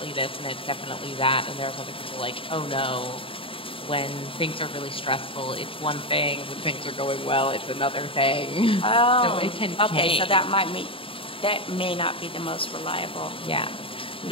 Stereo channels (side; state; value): right; late; 0.26 ms